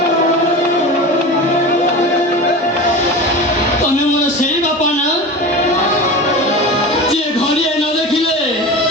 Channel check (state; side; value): normal; both; correlation 0.30